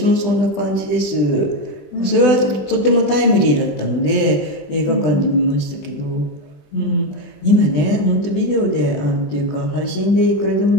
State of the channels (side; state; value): right; late; 20 ms